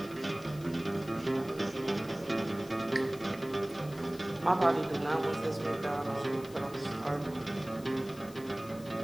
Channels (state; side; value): noise; left; hiss, 20 dB below the sound